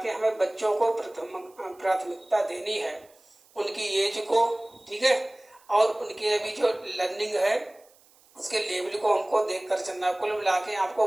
के हमें बच्चों को प्राथमिकता देनी है, उनकी एज को, ठीक है, और उनके अभी जो लर्निंग है उसके लेवल को हमको देखकर चलना। कुल मिला के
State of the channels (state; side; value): noise; right; hiss, 30 dB below the sound